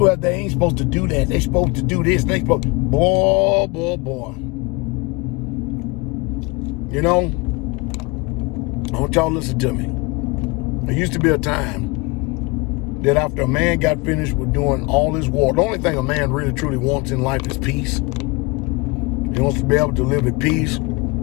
they ain't supposed to do that. They supposed to do this. They supposed, boy. You know, I want y'all to listen to me. There used to be a time that after a man got finished with doing all his war, the only thing a man really truly wants in life is peace. He wants to be able to live at peace.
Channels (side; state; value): right; quieter; 26.6 dB